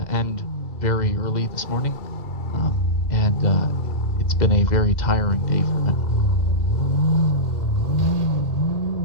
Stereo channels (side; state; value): right; late; 2.1 ms